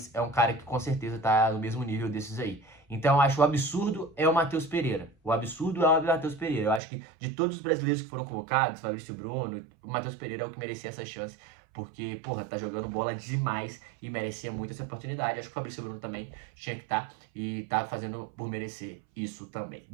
é um cara que com certeza tá no mesmo nível desses aí. Então eu acho o absurdo é o Matheus Pereira. O absurdo é o Matheus Pereira. Eu acho que de todos os brasileiros que foram convocados, Fabrício Bruno, o Matheus Pereira é o que merecia essa chance. Porque, porra, tá jogando bola demais e merecia muito essa oportunidade. Acho que o Fabrício Bruno também tinha que estar e tá fazendo por merecer isso também.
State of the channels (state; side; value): drops out; left; at 6.8 s